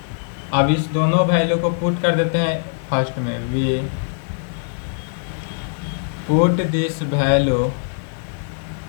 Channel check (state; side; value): silent; right; digital silence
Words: अब इस दोनों value को put कर देते हैं फर्स्ट में, we put this value